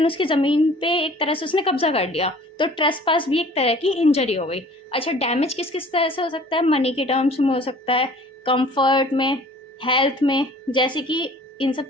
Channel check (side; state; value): both; normal; correlation 0.50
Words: उसकी ज़मीन पे एक तरह से उसने कब्जा कर लिया, तो ट्रेसपास भी एक तरह की इंजरी हो गई। अच्छा, डैमेज किस किस तरह से हो सकता है? मनी के टर्म्स में हो सकता है, कंफर्ट में, हेल्थ में, जैसे कि इन सब